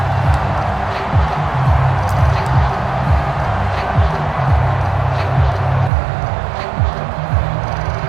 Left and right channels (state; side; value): drops out; left; at 5.9 s